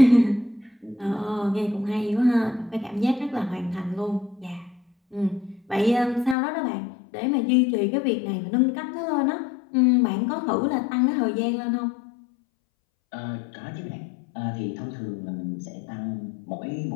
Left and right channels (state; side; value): drops out; right; at 6.4 s